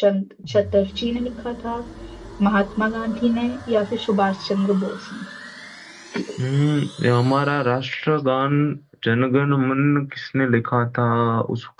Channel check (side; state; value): both; identical; correlation 1.00